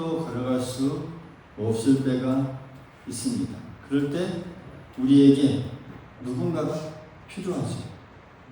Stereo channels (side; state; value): both; identical; correlation 1.00